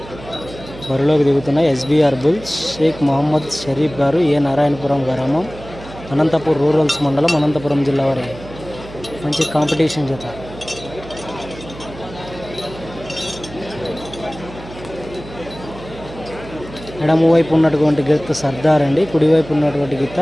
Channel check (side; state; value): right; noise; hum, 15 dB below the sound